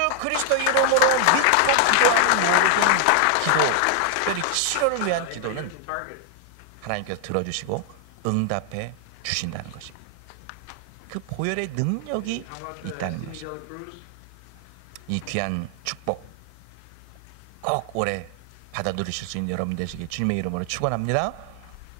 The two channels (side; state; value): both; different; correlation 0.00